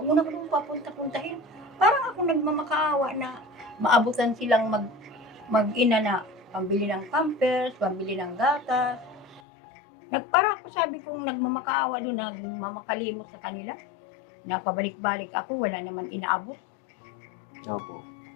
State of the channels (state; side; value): drops out; right; at 9.4 s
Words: mo na ko papunta-puntahin. Parang ako nagmamakaawa na maabutan silang mag-ina na pambili ng pampers, pambili ng gatas. Parang ako sabi kong nagmamakaawa doon, nagmamakalimot sa kanila. Napabalik-balik ako, wala naman inaabot. Opo.